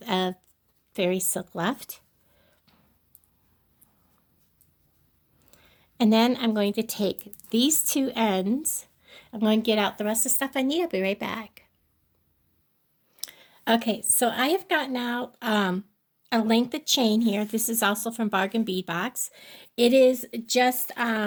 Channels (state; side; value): identical; both; correlation 1.00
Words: of fairy silk left. And then I'm going to take these two ends. I'm going to get out the rest of the stuff I need. I'll be right back. Okay, so I have gotten out a length of chain here. This is also from Bargain Bead Box. It is just